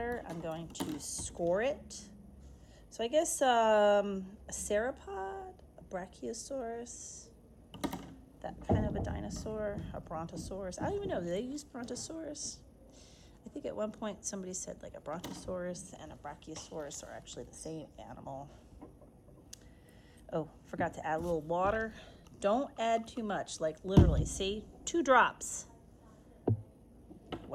I'm going to score it. So I guess a sauropod, a brachiosaurus, that kind of a dinosaur, a brontosaurus. I don't even know, do they use brontosaurus? I think at one point somebody said like a brontosaurus and a brachiosaurus are actually the same animal. Oh, forgot to add a little water. Don't add too much, like literally, see, 2 drops.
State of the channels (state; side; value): identical; both; correlation 1.00